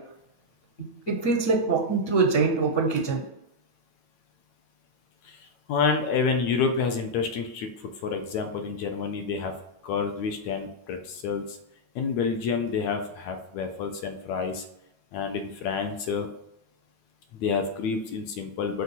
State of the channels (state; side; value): late; right; 9.1 ms